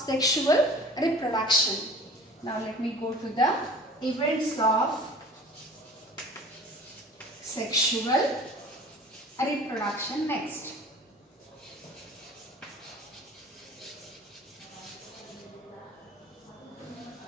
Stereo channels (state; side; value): normal; both; correlation 0.44